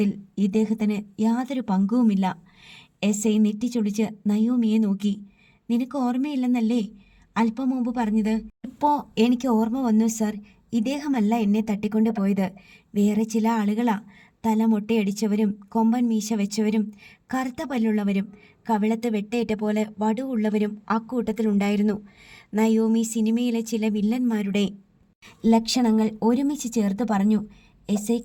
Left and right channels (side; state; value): both; identical; correlation 1.00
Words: ഇദ്ദേഹത്തിന് യാതൊരു പങ്കുമില്ല. എസ് ഐ നെറ്റിച്ചൊളിച്ച് നയോമിയെ നോക്കി. നിനക്ക് ഓർമ്മയില്ലെന്നല്ലേ അല്പം മുമ്പ് പറഞ്ഞത്? ഇപ്പോൾ എനിക്ക് ഓർമ്മ വന്നു സർ. ഇദ്ദേഹമല്ല എന്നെ തട്ടിക്കൊണ്ടുപോയത്, വേറെ ചില ആളുകളാ. തല മൊട്ടയടിച്ചവരും കൊമ്പൻ മീശ വെച്ചവരും കറുത്ത പല്ലുള്ളവരും കവിളത്ത് വെട്ടേറ്റ പോലെ വടുവുള്ളവരും അക്കൂട്ടത്തിലുണ്ടായിരുന്നു. നയോമി സിനിമയിലെ ചില വില്ലന്മാരുടെ ലക്ഷണങ്ങൾ ഒരുമിച്ച് ചേർത്ത് പറഞ്ഞു. എസ് ഐ